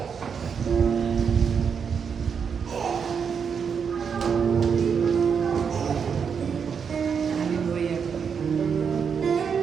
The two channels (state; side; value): quieter; left; 6.6 dB